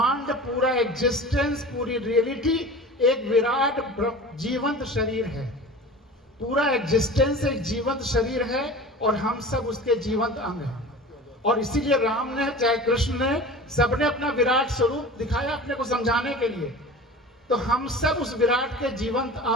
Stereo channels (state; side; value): normal; both; correlation 0.37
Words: पूरा एग्जिस्टेंस, पूरी रियलिटी एक विराट जीवंत शरीर है। पूरा एग्जिस्टेंस एक जीवंत शरीर है, और हम सब उसके जीवंत अंग हैं। और इसीलिए राम ने चाहे कृष्ण ने, सबने अपना विराट स्वरूप दिखाया अपने को समझाने के लिए। तो हम सब उस विराट के जीवंत